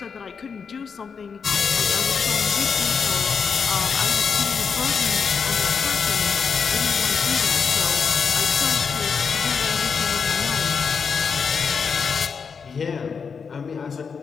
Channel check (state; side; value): quieter; right; 5.9 dB